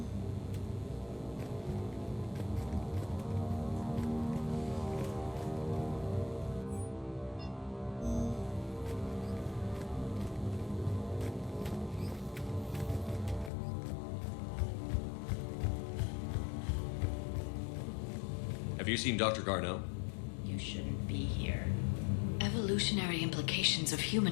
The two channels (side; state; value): right; drops out; at 13.5 s